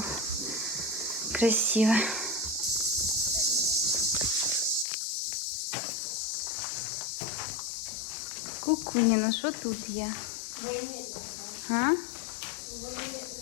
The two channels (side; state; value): right; drops out; at 4.9 s